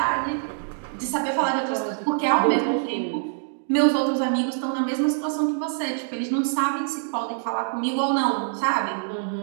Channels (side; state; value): left; silent; digital silence